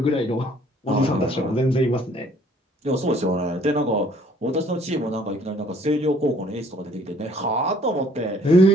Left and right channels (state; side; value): normal; both; correlation 0.59